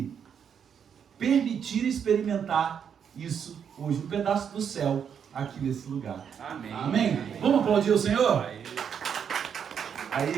permitir experimentar isso hoje, um pedaço do céu aqui nesse lugar. Amém. Amém? Vamos aplaudir o Senhor? Aí,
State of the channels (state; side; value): quieter; left; 7.7 dB